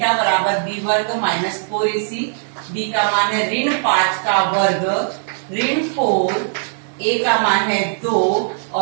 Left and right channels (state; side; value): silent; left; digital silence